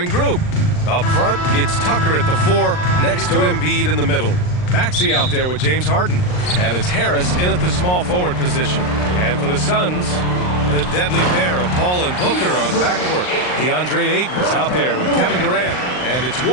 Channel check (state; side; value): late; right; 39 ms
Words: group. Up front, it's Tucker at the 4, next to Embiid in the middle. Maxey out there with James Harden. And it's Harris in at the small forward position. And for the Suns, the deadly pair of Paul and Booker on the backcourt. DeAndre Ayton is out there with Kevin Durant. And it's